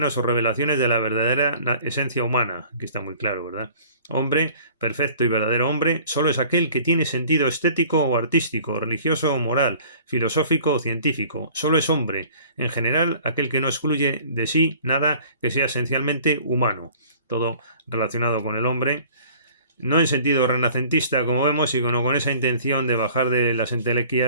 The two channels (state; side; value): inverted; both; correlation -0.49